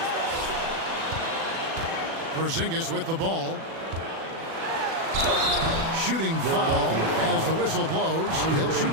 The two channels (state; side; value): late; left; 37 ms